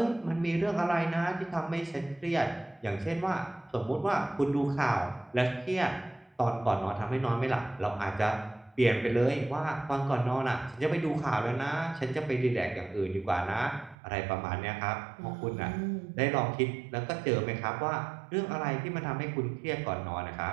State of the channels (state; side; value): drops out; left; at 14.0 s